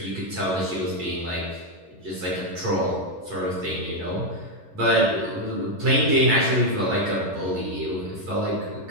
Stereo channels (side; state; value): left; late; 11 ms